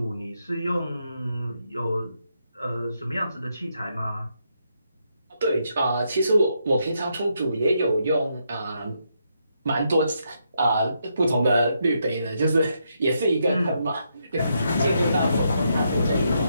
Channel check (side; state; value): both; inverted; correlation -0.79